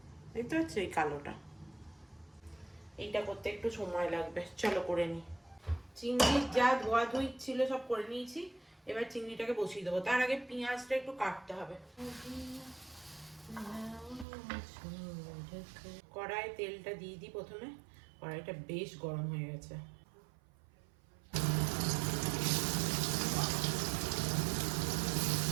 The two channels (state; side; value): drops out; left; at 14.2 s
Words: দেখতে পাচ্ছ এই কালোটা, এইটা করতে একটু সময় লাগবে। চলো করে নিই। চিংড়ির যা ধোয়া ধুই ছিল সব করে নিয়েছি, এবার চিংড়িটাকে বসিয়ে দেবো। তার আগে পেঁয়াজটা একটু কাটতে হবে। কড়াই তেলটা দিয়ে দিই প্রথমে, কড়াইটা বেশ গরম হয়ে গেছে।